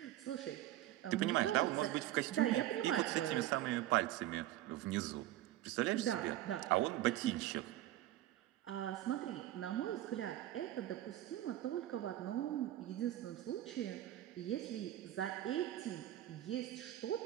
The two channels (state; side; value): quieter; left; 14.0 dB